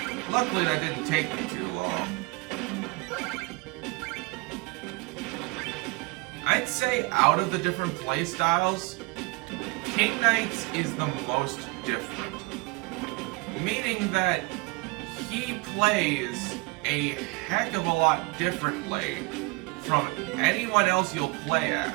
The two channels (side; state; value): left; quieter; 26.6 dB